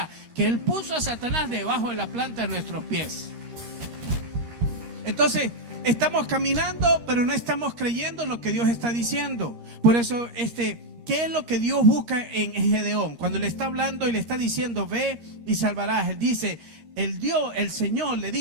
que él puso a Satanás debajo de la planta de nuestros pies. Entonces, estamos caminando, pero no estamos creyendo en lo que Dios está diciendo. Por eso, ¿qué es lo que Dios busca en Gedeón? Cuando le está hablando y le está diciendo, ve y salvarás. Él dice, el Señor le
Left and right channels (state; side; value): late; left; 13 ms